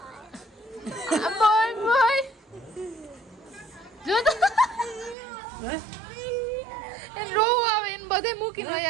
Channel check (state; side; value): drops out; left; at 5.2 s